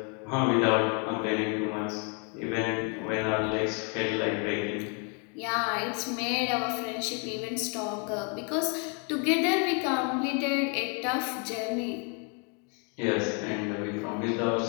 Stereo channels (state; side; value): quieter; right; 36.7 dB